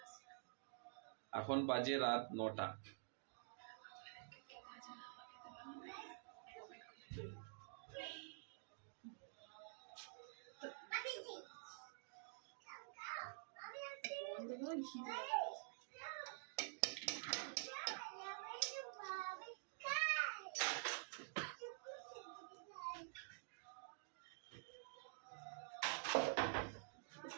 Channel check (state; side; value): silent; left; digital silence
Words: এখন বাজে রাত 9টা।